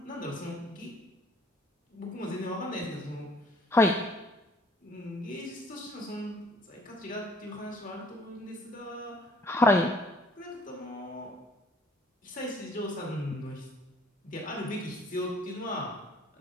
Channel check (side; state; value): both; normal; correlation 0.58